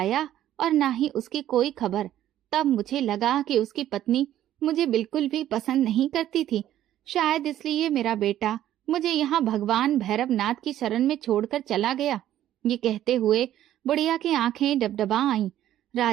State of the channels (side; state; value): left; quieter; 12.3 dB